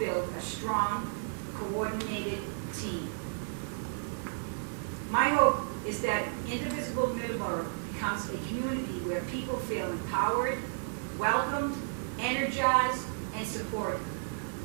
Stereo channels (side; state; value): left; silent; digital silence